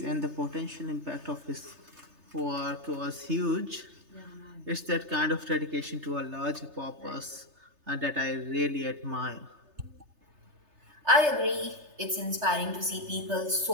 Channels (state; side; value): late; left; 3.3 ms